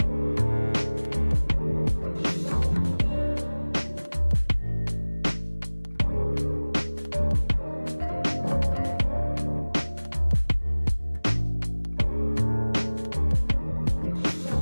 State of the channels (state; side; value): inverted; both; correlation -1.00